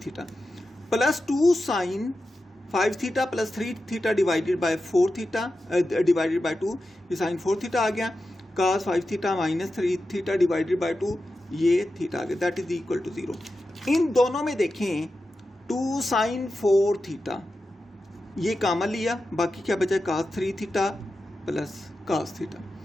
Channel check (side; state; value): both; normal; correlation 0.91